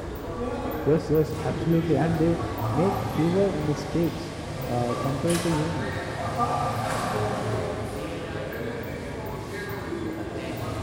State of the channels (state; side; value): identical; both; correlation 1.00